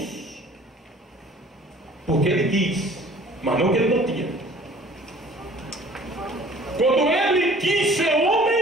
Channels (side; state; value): both; normal; correlation 0.51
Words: porque ele quis, mas não que ele não tinha. Quando ele quis ser